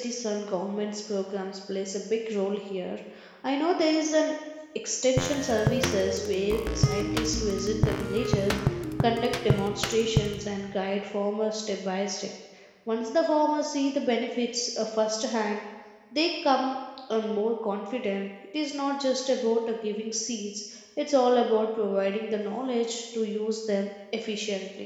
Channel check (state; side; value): identical; both; correlation 1.00